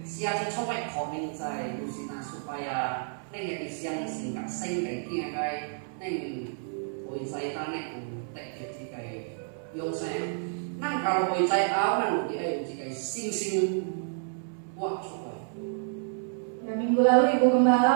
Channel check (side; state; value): left; silent; 58 dB below the other